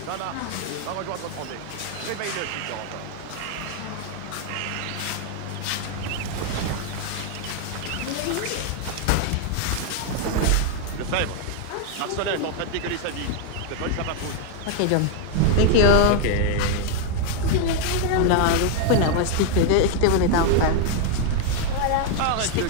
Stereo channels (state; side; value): different; both; correlation 0.00